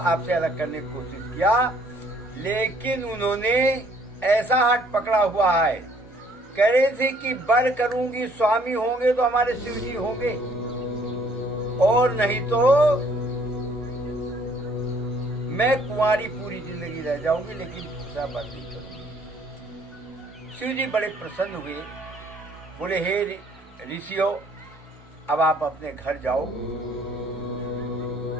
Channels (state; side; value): normal; both; correlation 0.62